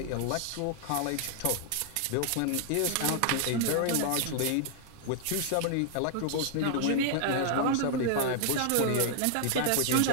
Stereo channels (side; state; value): both; different; correlation 0.00